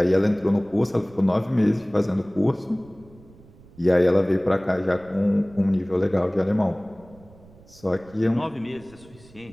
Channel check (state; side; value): noise; right; rumble, 24 dB below the sound